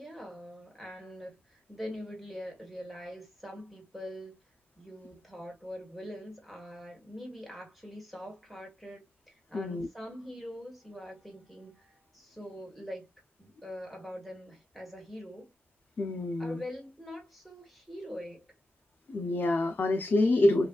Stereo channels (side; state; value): both; normal; correlation 0.90